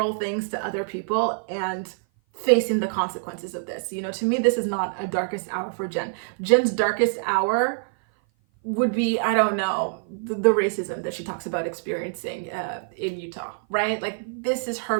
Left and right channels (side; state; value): left; silent; 56 dB below the other